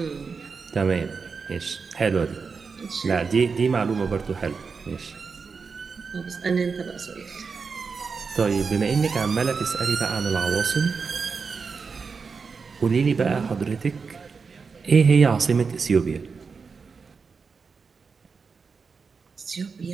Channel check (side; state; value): left; quieter; 5.1 dB